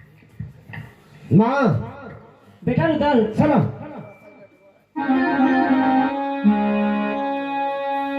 माँ बेटा रुदल, चलो।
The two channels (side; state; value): both; identical; correlation 1.00